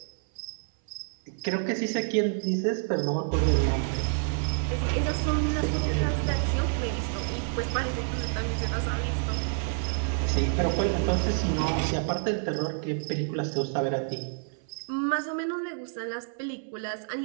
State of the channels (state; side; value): silent; left; 59 dB below the other